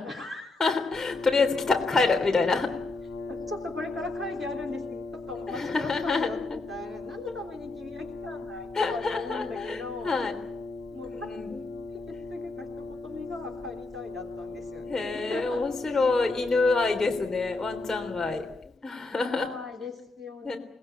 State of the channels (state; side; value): quieter; right; 3.4 dB